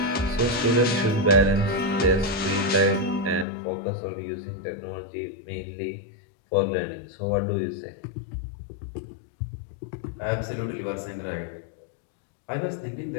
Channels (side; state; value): right; drops out; at 3.5 s